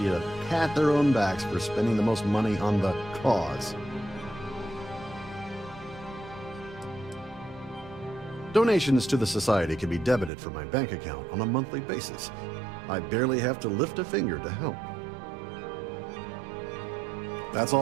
to pat their own backs for spending the most money on the cause. Donations to the Society can be debited from my bank account on a monthly basis. I barely have to lift a finger to help. That's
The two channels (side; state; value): left; drops out; at 10.3 s